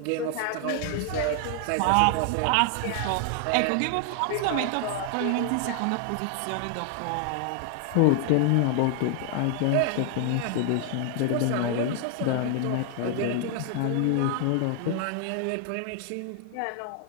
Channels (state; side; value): different; both; correlation 0.00